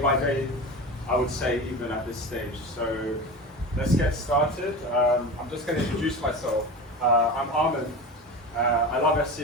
day, I would say even at this stage. So let's get started. I'm just going to introduce myself. I'm Armen. I love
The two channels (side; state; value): both; normal; correlation 0.28